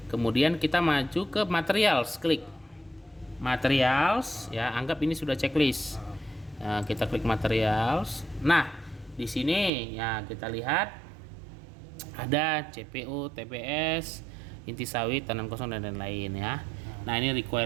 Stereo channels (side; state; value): left; drops out; at 9.7 s